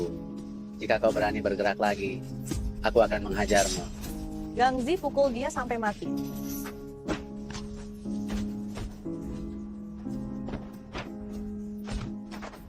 Jika kau berani bergerak lagi, aku akan menghajarmu. Gangzi pukul dia sampai mati.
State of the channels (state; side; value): identical; both; correlation 1.00